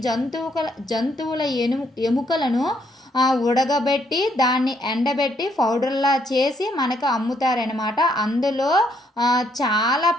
జంతువుల ఎముకలను ఉడకబెట్టి దాన్ని ఎండబెట్టి పౌడర్లా చేసి మనకు అమ్ముతారనమాట. అందులో చాలా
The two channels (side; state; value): both; normal; correlation 0.72